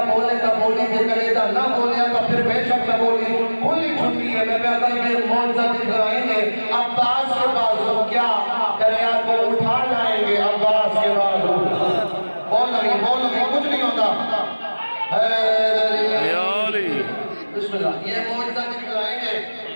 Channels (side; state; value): both; inverted; correlation -1.00